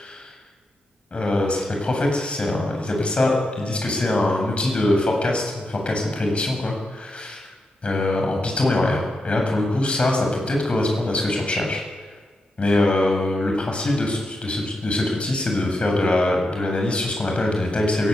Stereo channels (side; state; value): both; normal; correlation 0.85